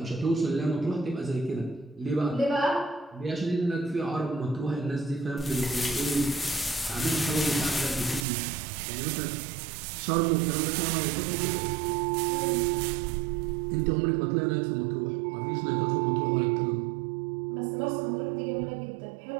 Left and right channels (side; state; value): left; drops out; at 8.2 s